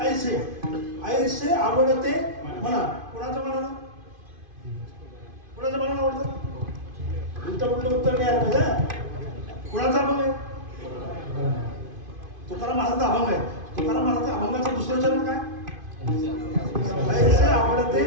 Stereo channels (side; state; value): left; late; 2.5 ms